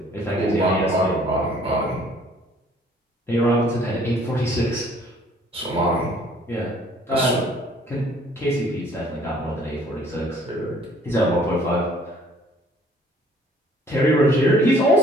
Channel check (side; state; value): both; normal; correlation 0.58